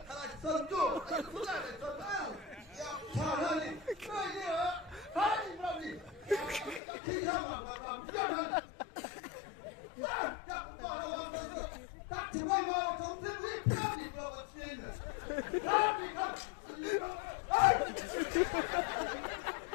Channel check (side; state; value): right; drops out; at 6.8 s